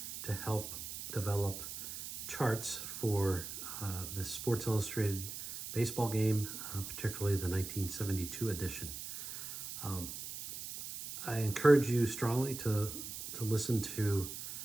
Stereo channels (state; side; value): noise; right; hiss, 8 dB below the sound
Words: to help develop charts for the Sports Illustrated baseball game, particularly the 1972 edition. I encourage you strongly to listen to